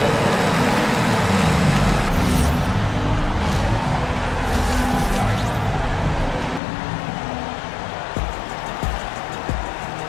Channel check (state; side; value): drops out; right; at 6.6 s